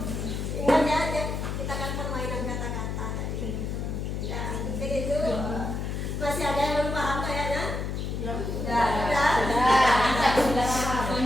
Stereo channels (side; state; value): left; noise; hum, 3 dB below the sound